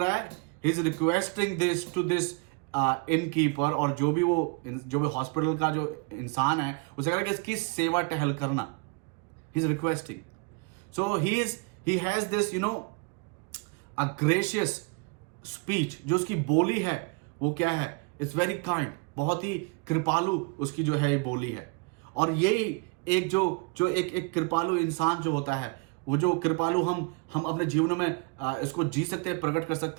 रहा है, he is requesting this to this innkeeper, और जो भी हॉस्पिटल का जो इंसान है, उसे कह रहा है कि इसकी सेवा टहल करना, he is requesting. So he has this a gracious speech, जो उसकी बोली है वो क्या है, इट्स वेरी काइंड, बहुत ही कृपालु उसकी जो है ये बोली है। और यही एक जो एक कृपालु इंसान जो होता है, वो जो कृपालु हम अपने जीवन में इसको जी सकते हैं, प्रकट कर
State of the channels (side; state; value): left; quieter; 31.5 dB